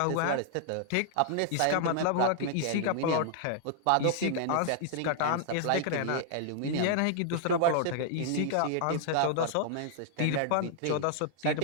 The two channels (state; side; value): different; both; correlation -0.01